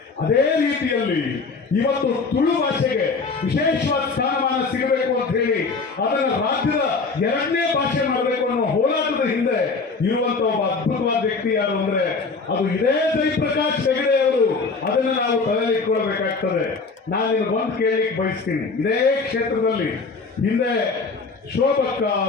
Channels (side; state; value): right; quieter; 4.3 dB